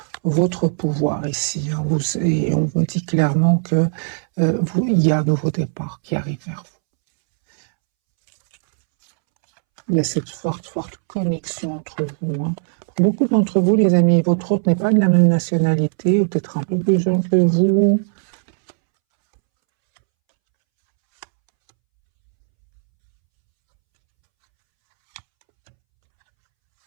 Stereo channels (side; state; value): left; silent; 67 dB below the other